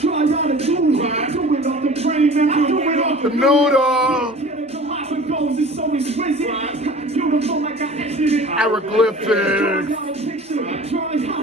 out a tune. Do it off the brain, man, I do it off The noodle. Yeah, the life it goes, it's so exquisite. Beautiful like I exited. Hieroglyphics. Try out a picture, try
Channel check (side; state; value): both; normal; correlation 0.42